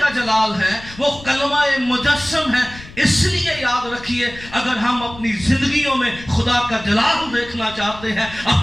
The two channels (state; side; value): noise; left; rumble, 18 dB below the sound